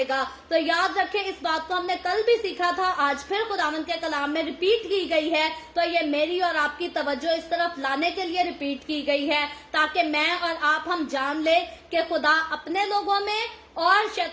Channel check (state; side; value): identical; both; correlation 1.00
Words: तो याद रखें, इस बात को हमने कल भी सीखा था, आज फिर खुदावन के कलाम में रिपीट की गई है। तो ये मेरी और आपकी तवज्जो इस तरफ लाने के लिए रिपीट की गई है, ताकि मैं और आप हम जान ले कि खुदा अपने लोगों में और